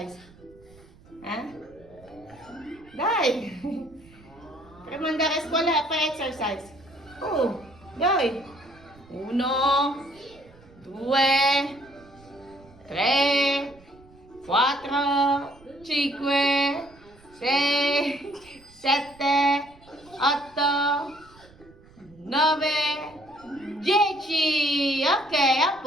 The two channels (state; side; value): noise; right; rumble, 26 dB below the sound